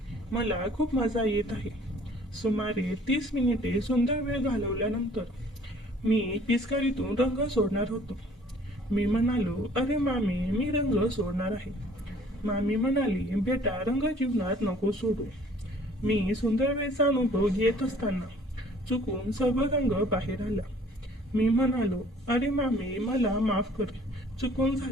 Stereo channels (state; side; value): normal; both; correlation 0.55